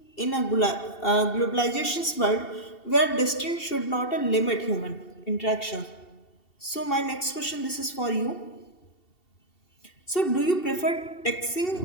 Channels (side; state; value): right; late; 2.7 ms